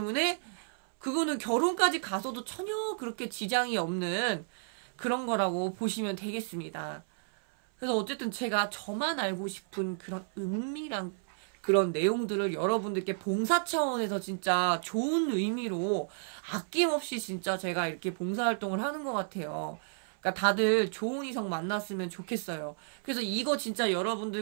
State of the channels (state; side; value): silent; left; 57 dB below the other